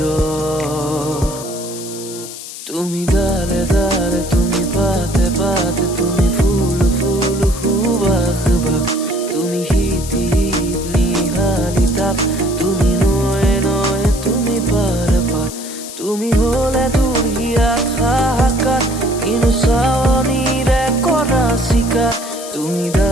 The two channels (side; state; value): left; noise; hiss, 12 dB below the sound